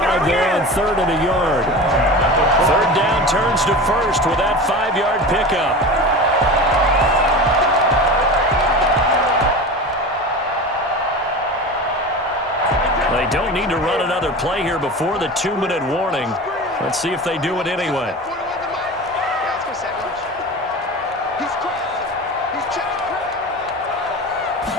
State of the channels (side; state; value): both; normal; correlation 0.31